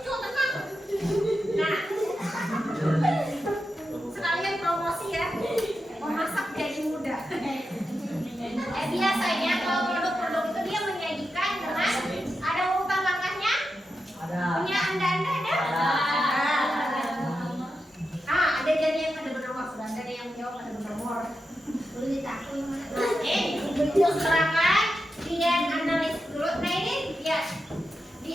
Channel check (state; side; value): normal; both; correlation 0.89